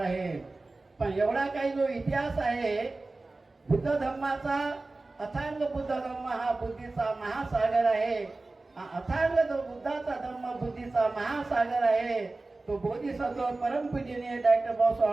पण एवढा काही जो इतिहास आहे बुद्ध धर्माचा, अथांग बुद्ध धर्म हा बुद्धीचा महासागर आहे. अथांग जो बुद्धाचा धर्म बुद्धीचा महासागर आहे. तो बोधिसत्व परमपूजनीय डॉक्टर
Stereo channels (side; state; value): left; quieter; 3.2 dB